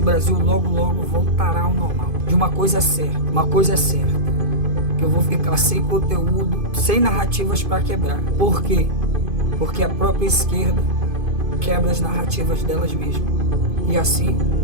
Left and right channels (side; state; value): left; late; 2.5 ms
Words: Brasil logo voltará ao normal. De uma coisa é certa, que eu vou ficar sem conteúdo, sem narrativas para quebrar. Por quê? Porque a própria esquerda quebra as narrativas delas mesmas. E assim